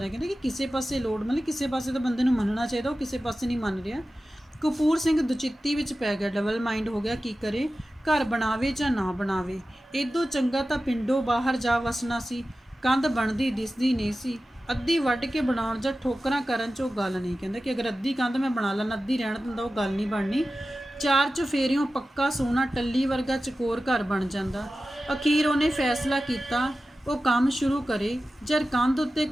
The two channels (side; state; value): both; normal; correlation 0.94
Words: ਕਹਿੰਦੇ ਕਿ ਕਿਸੇ ਪਾਸੇ ਲੋਟ ਮਤਲਬ ਕਿਸੇ ਪਾਸੇ ਤਾਂ ਬੰਦੇ ਨੂੰ ਮੰਨਣਾ ਚਾਹੀਦਾ, ਉਹ ਕਿਸੇ ਪਾਸੇ ਨਹੀਂ ਮੰਨ ਰਿਹਾ। ਕਪੂਰ ਸਿੰਘ ਦੁਚਿੱਤੀ ਵਿੱਚ ਪੈ ਗਿਆ, ਡਬਲ ਮਾਈਂਡ ਹੋ ਗਿਆ, ਕੀ ਕਰੇ, ਘਰ ਬਣਾਵੇ ਜਾਂ ਨਾ ਬਣਾਵੇ। ਇਦੋਂ ਚੰਗਾ ਤਾਂ ਪਿੰਡੋਂ ਬਾਹਰ ਜਾ ਵਸਣਾ ਸੀ। ਕੰਧ ਬਣਦੀ ਦਿਸਦੀ ਨਹੀਂ ਸੀ, ਅੱਧੀ ਵੱਢ ਕੇ ਬਣਾਉਣ ਜਾਂ ਠੋਕਰਾਂ ਕਰਨ 'ਚ ਉਹ ਗੱਲ ਨਹੀਂ। ਕਹਿੰਦੇ ਕਿ ਅਗਰ ਅੱਧੀ ਕੰਧ ਮੈਂ ਬਣਾ ਲੈਣਾ, ਅੱਧੀ ਰਹਿਣ ਦਿੰਦਾ, ਉਹ ਗੱਲ ਨਹੀਂ ਬਣਨੀ। ਚਾਰ ਚੁਫੇਰਿਓਂ ਪੱਕਾ ਸੋਨਾ ਟੱਲੀ ਵਰਗਾ ਚਕੋਰ ਘਰ ਬਣ ਜਾਂਦਾ। ਅਖੀਰ ਉਹਨੇ ਫੈਸਲਾ ਕੀਤਾ ਉਹ ਕੰਮ ਸ਼ੁਰੂ ਕਰੇ। ਜਦ ਕੰਧ ਉੱਤੇ